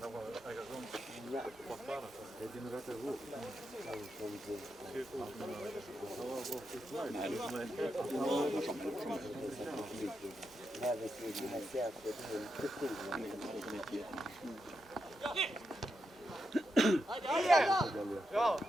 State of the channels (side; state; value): both; normal; correlation 0.85